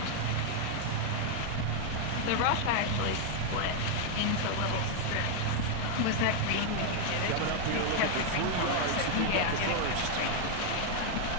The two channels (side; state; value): both; different; correlation 0.00